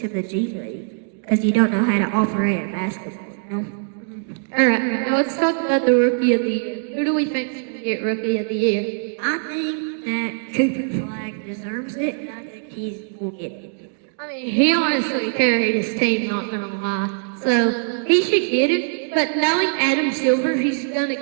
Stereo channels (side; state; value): left; silent; digital silence